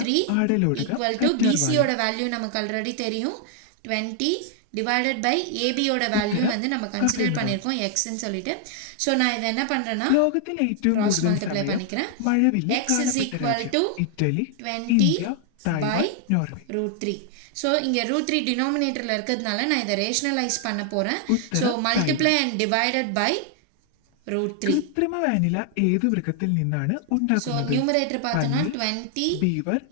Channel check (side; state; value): both; different; correlation 0.00